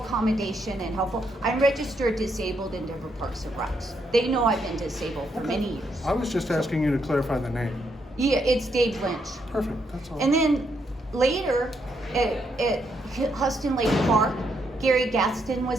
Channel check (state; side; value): normal; both; correlation 0.77